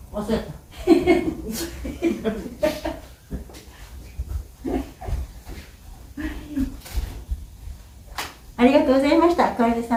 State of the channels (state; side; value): identical; both; correlation 1.00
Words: 忘れたありがとうございました。これで